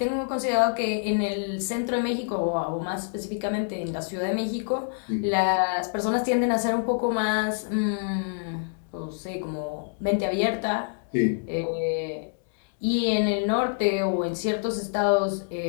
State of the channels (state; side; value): silent; right; digital silence